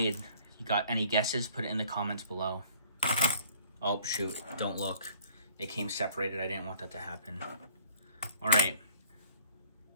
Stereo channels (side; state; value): both; inverted; correlation -0.56